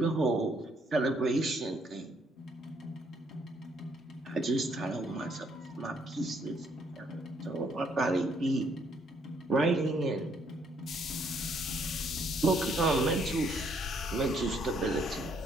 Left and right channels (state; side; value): normal; both; correlation 0.69